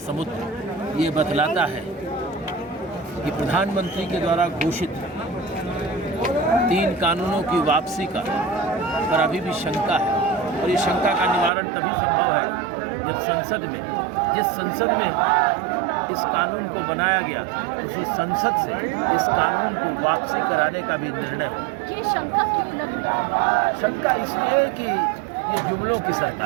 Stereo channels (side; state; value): left; drops out; at 11.5 s